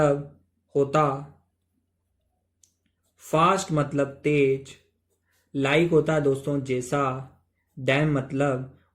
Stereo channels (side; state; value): both; identical; correlation 1.00